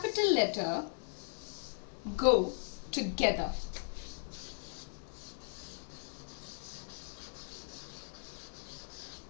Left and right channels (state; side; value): silent; right; digital silence